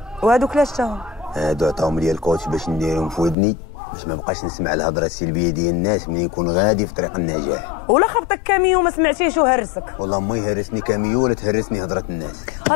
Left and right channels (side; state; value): right; drops out; at 3.4 s